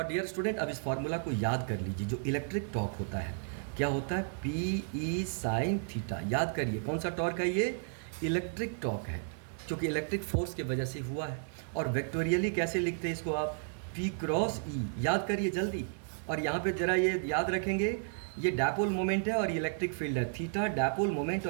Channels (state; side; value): silent; left; digital silence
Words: डियर स्टूडेंट अब इस फॉर्मूला को याद कर लीजिए। जो इलेक्ट्रिक टॉर्क होता है क्या होता है? P E sine theta. याद करिए कौन सा टॉर्क है ये? इलेक्ट्रिक टॉर्क है, क्योंकि इलेक्ट्रिक फोर्स की वजह से हुआ है। और वेक्टोरियली कैसे लिखते हैं इसको आप? पी क्रॉस ई। याद करिए जल्दी। और यहाँ पे जरा ये याद रखेंगे, ये डायपोल मोमेंट है और ये इलेक्ट्रिक फील्ड है। थीटा डायपोल मोमेंट